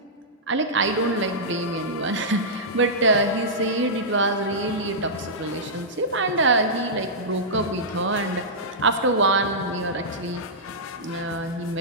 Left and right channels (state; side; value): normal; both; correlation -0.13